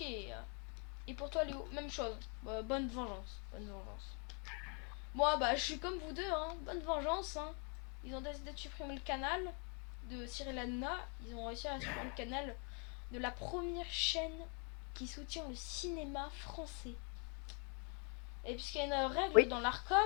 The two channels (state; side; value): quieter; right; 34.9 dB